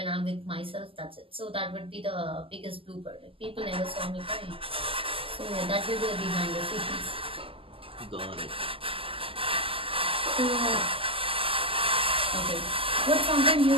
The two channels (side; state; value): left; late; 0.26 ms